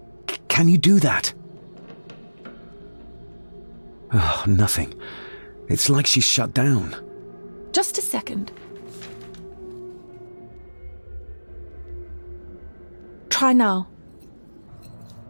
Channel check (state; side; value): inverted; both; correlation -1.00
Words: Can you do that? Oh, nothing. It's like she's shut down. Just a second. Try now.